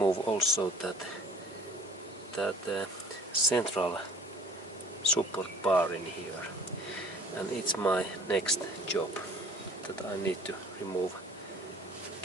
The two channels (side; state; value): both; normal; correlation 0.50